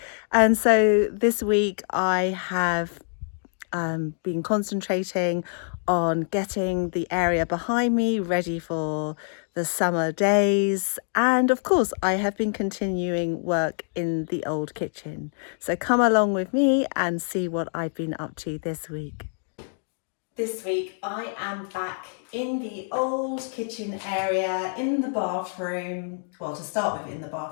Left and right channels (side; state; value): right; silent; 61 dB below the other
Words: And so this week I have been concentrating on getting the area behind me ready for the summer days, and of course I have been continuing work in the old kitchen. So come along with me and see what I've been up to this week. This week I am back in the old kitchen area, in the bathroom, well, to start with in the